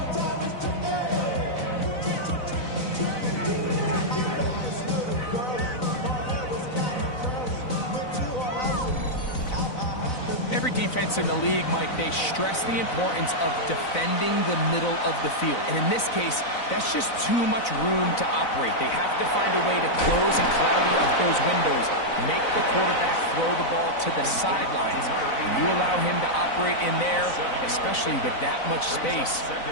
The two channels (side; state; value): right; late; 4.0 ms